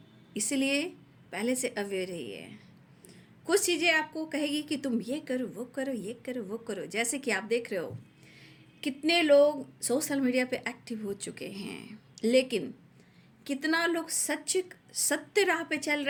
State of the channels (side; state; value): both; identical; correlation 1.00